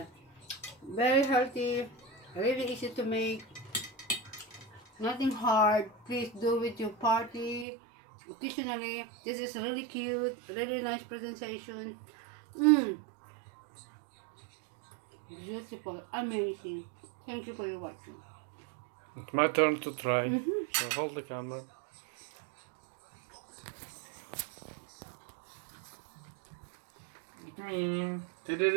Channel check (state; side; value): drops out; left; at 7.7 s